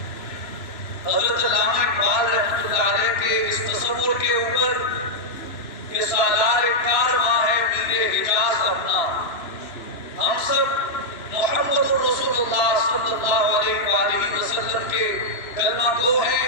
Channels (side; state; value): right; late; 2.9 ms